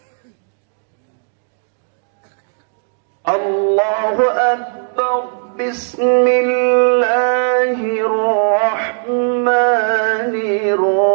الله أكبر. بسم الله الرحمن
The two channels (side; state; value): left; silent; digital silence